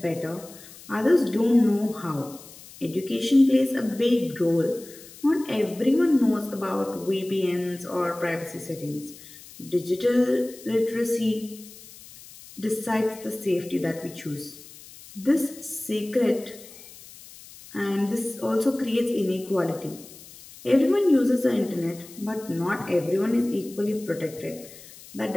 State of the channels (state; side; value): noise; left; hiss, 19 dB below the sound